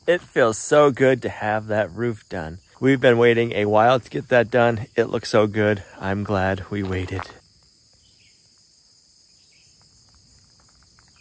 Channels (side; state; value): both; identical; correlation 1.00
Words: It feels so good to have that roof done. We've been waiting a while to get that done. It looks so good. I'm glad we waited.